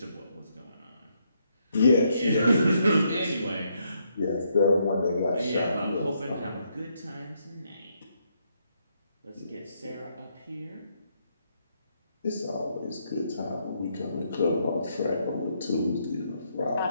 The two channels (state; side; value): inverted; both; correlation -0.76